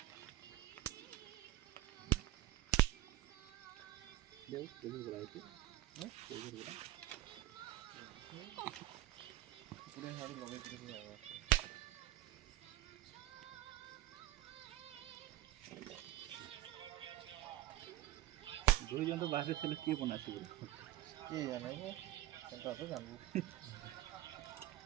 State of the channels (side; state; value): left; quieter; 14.8 dB